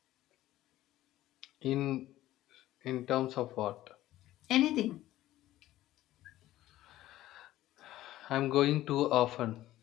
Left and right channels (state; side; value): quieter; right; 14.9 dB